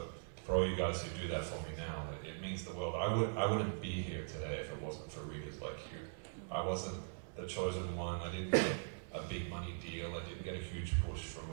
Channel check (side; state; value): left; silent; digital silence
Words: for all you guys who do that for me now, it means the world. I wouldn't be here today if it wasn't for readers like you. I wasn't the chosen one. I didn't get a big money deal. I didn't get a huge push from